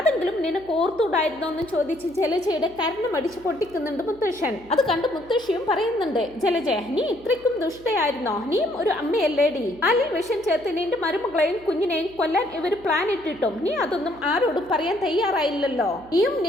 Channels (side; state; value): right; noise; hum, 23 dB below the sound